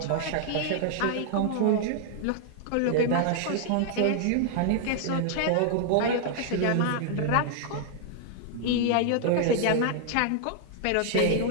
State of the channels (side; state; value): both; different; correlation -0.01